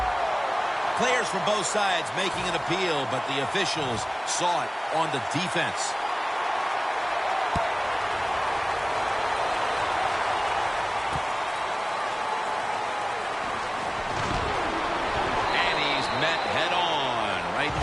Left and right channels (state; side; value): identical; both; correlation 1.00